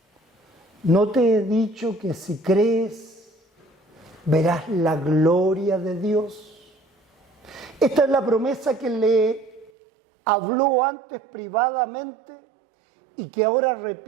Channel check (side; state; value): left; drops out; at 9.7 s